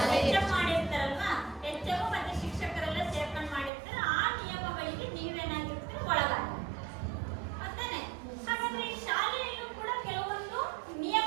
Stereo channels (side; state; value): left; drops out; at 3.7 s